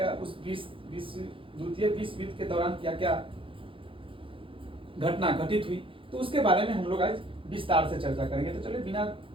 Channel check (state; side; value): late; left; 0.25 ms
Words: उस द्वितीय विश्व युद्ध के दौरान क्या क्या घटना घटित हुई, तो उसके बारे में हम लोग आज विस्तार से चर्चा करेंगे। तो चलिए बिना